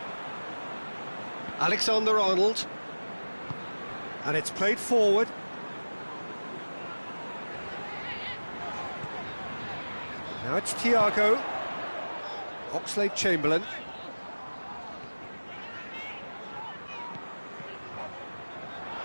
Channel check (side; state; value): both; inverted; correlation -1.00